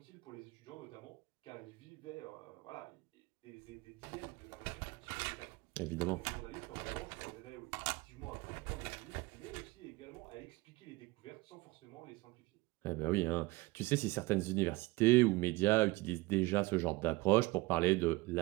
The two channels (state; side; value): quieter; left; 21.8 dB